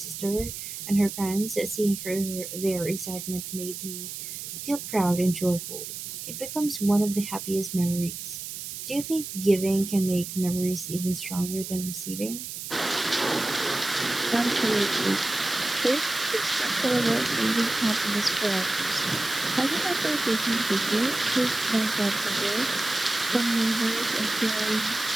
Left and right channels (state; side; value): noise; right; hiss, 8 dB below the sound